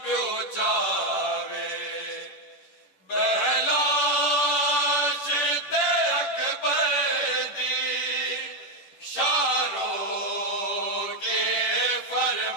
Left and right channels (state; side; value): late; right; 10 ms